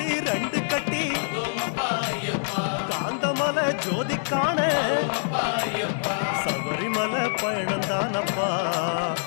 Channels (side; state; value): right; silent; digital silence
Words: 2 கட்டி காந்தமலை ஜோதி காண சபரிமலை பயணம் தானப்பா